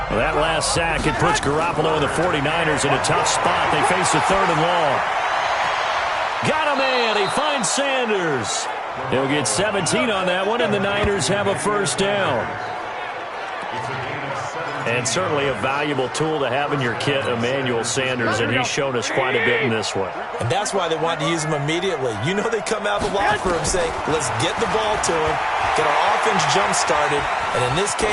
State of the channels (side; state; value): both; identical; correlation 1.00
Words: Well, that last sack, it puts Garoppolo and the 49ers in a tough spot. They face a 3rd and long. Got a man. He finds Sanders. He'll get 17 on that one, and the Niners have a first down. And certainly a valuable tool to have in your kit, Emmanuel Sanders, and he's shown us quite a bit in this one. And that's why they wanted to use him immediately. You know they come out of the locker room saying, let's get the ball to him, get our offense jump-started, and in this